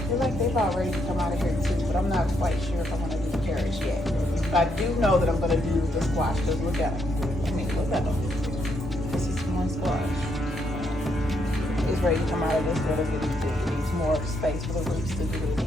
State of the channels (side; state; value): both; normal; correlation 0.76